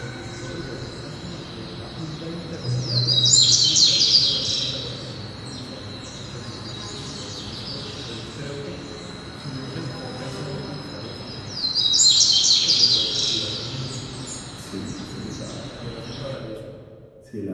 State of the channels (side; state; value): both; identical; correlation 1.00